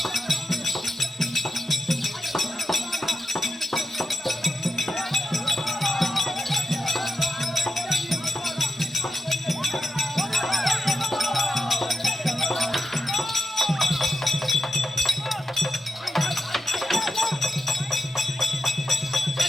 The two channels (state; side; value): normal; both; correlation 0.89